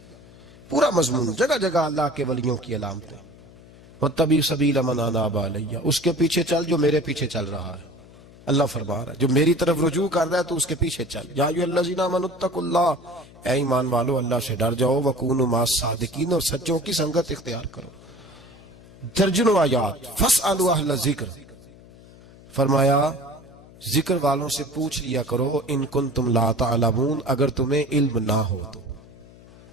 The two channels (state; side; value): noise; left; hum, 22 dB below the sound